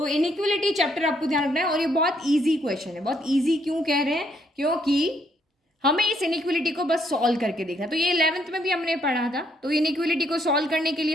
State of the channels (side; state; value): both; normal; correlation 0.71